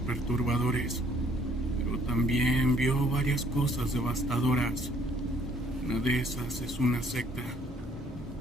pero también vio varias cosas devastadoras. Una de esas es una secta.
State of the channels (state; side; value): normal; both; correlation 0.62